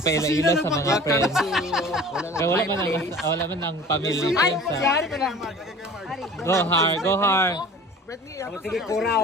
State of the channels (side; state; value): both; normal; correlation 0.44